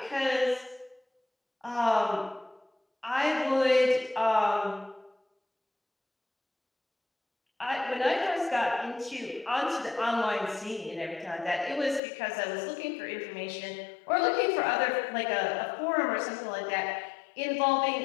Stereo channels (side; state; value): right; drops out; at 12.0 s